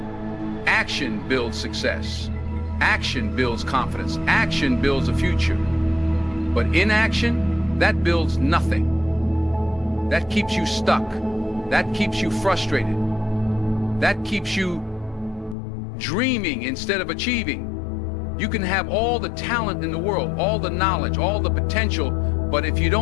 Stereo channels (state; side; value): drops out; right; at 15.6 s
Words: Action builds success. Action builds confidence. Action builds a future. But inaction, that builds nothing. That keeps you stuck. That keeps you frustrated. That keeps you dreaming instead of achieving. You can have all the talent in the world, all the knowledge, all the potential, but if you